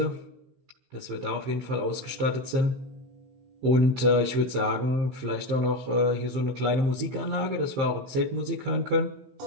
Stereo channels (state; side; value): late; left; 15 ms